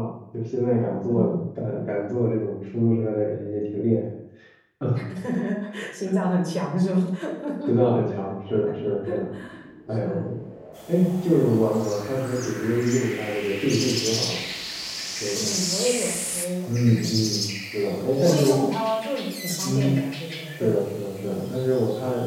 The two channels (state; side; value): identical; both; correlation 1.00